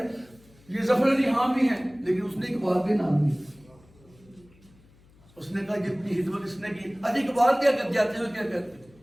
یہ ظفر علی خان بھی ہیں، لیکن اس نے اقبال کے نام نہیں. اس نے کہا جتنی خدمت اس نے کی. اجی اقبال کیا کر جاتے ہیں، کیا کہتے ہیں؟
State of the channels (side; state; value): left; noise; hum, 28 dB below the sound